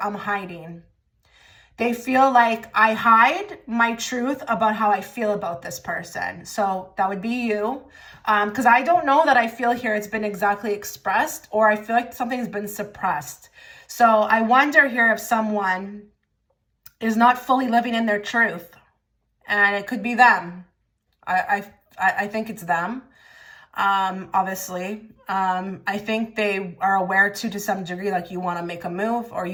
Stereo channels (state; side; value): identical; both; correlation 1.00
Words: I'm hiding. They feel like I hide my truth about how I feel about this person. So that would be you. Because I don't know that I feel here it's been exactly expressed, or I feel like something's been suppressed. So I wonder here if someone is not fully living in their truth, and it could be them. I think it's them. Obviously, I think they are aware to some degree, like you want to make a move, or